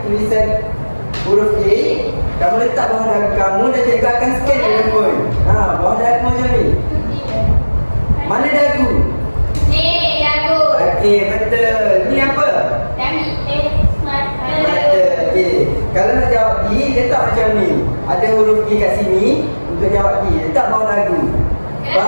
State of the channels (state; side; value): inverted; both; correlation -1.00